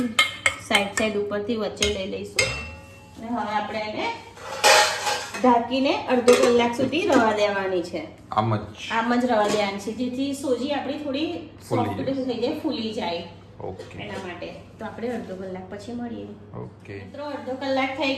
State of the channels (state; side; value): identical; both; correlation 1.00